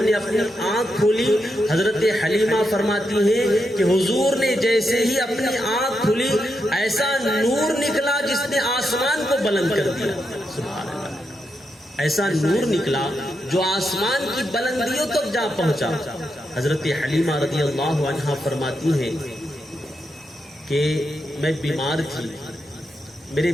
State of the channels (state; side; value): normal; both; correlation 0.84